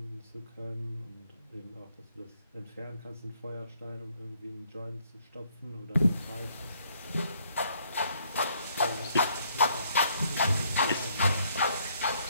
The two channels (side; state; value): both; inverted; correlation -0.68